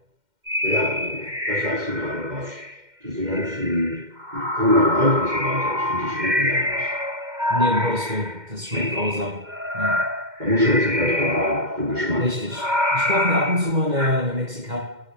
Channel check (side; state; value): left; late; 2.1 ms